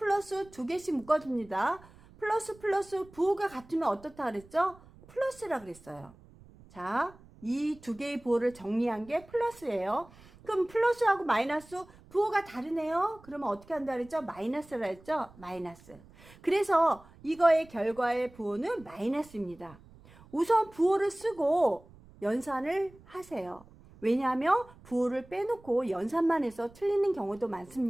두 개씩 묶어줍니다. 플러스 부호가 같으면 어떻다 그랬죠? 플러스라 그랬어요. 자, 이 두 개의 부호를 정리한 게 플러스예요. 그럼 플러스하고 마이너스 부호가 다르네요. 그러면 어떻게 한다 그랬죠? 마이너스라 했죠? 마이너스. 그래서 이거의 결과의 부호는 마이너스입니다. 우선 부호를 쓰고 연산을 하세요. 왜냐하면 부호를 빼놓고 연산만 해서 틀리는 경우도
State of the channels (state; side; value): noise; right; rumble, 24 dB below the sound